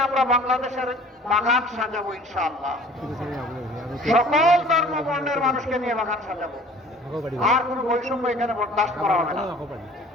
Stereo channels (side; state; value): both; normal; correlation 0.48